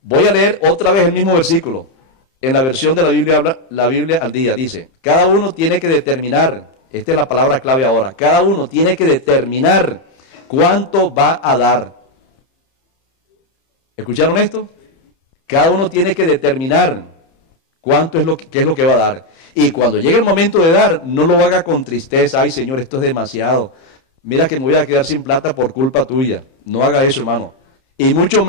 Voy a leer otra vez el mismo versículo. En la versión de la Biblia al día, dice: cada uno tiene que determinar, esta es la palabra clave ahora, cada uno tiene que determinar cuánto va a dar. ¿Escucharon esto? Cada uno tiene que determinar qué es lo que va a dar. Y cuando llegue el momento de dar, no lo haga con tristeza. Ay, Señor, esto es demasiado. Mira que me voy a quedar sin plata por culpa tuya. No haga eso, hermano. Y mucho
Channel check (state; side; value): late; right; 30 ms